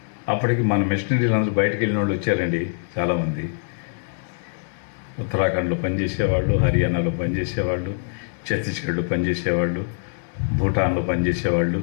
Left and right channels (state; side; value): silent; right; digital silence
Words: అప్పటికి మన మిషనరీలు అందరూ బయటకు వెళ్ళిన వాళ్ళు వచ్చారండి చాలామంది. ఉత్తరాఖండ్లో పనిచేసేవాళ్ళు, హర్యానాలో పనిచేసేవాళ్ళు, ఛత్తీస్గఢ్లో పనిచేసేవాళ్ళు, భూటాన్లో పనిచేసేవాళ్ళు,